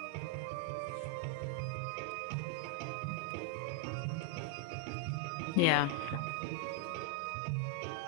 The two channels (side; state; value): both; different; correlation 0.00